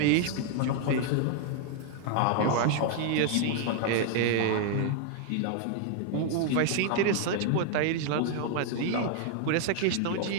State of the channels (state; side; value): different; both; correlation 0.00